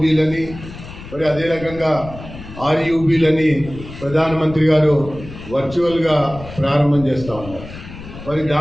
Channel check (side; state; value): left; noise; rumble, 14 dB below the sound